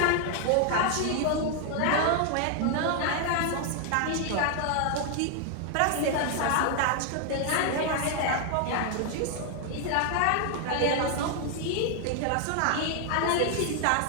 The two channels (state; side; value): different; both; correlation 0.00